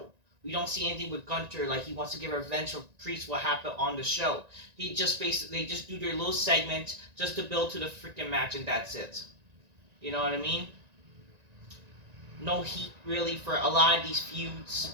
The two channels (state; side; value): late; left; 1.9 ms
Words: We don't see anything with Gunter, like he wants to get revenge for Priest what happened on the show. They just do their little segment just to build to the freaking match, and that's it. You know what I mean? No heat really for a lot of these